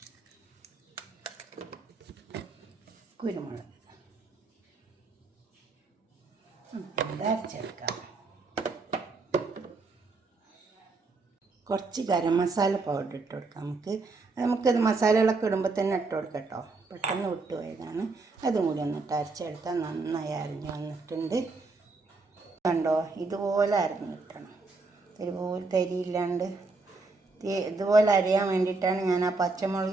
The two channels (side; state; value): left; quieter; 3.8 dB